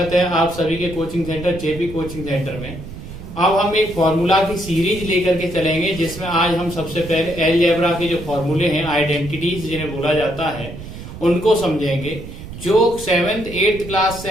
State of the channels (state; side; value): noise; right; rumble, 12 dB below the sound